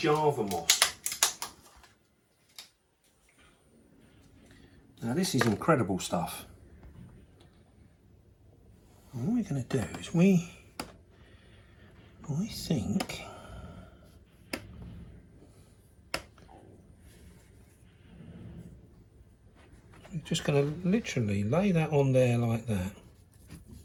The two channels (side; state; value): both; identical; correlation 1.00